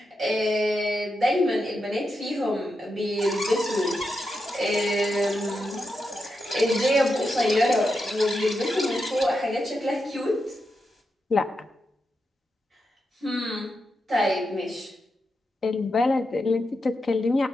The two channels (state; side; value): normal; both; correlation 0.87